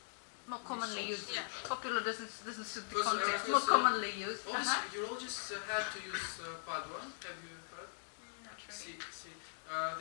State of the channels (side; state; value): right; silent; digital silence